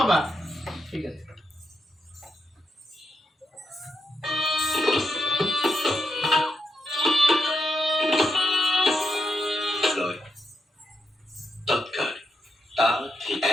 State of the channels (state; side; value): normal; both; correlation 0.83